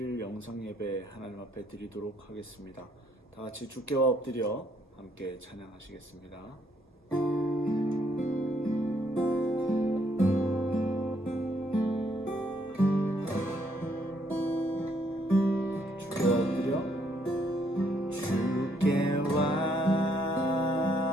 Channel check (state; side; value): normal; both; correlation 0.71